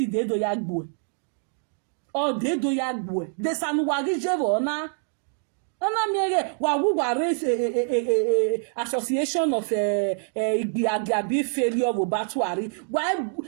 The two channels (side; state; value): left; silent; 61 dB below the other